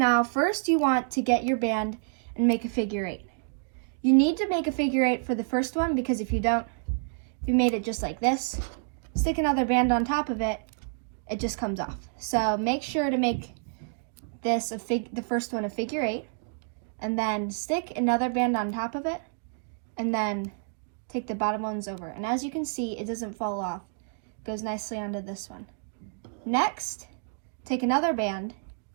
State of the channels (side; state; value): left; silent; digital silence